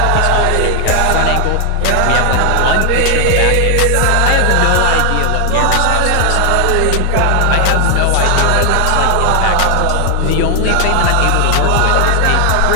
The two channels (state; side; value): different; both; correlation 0.00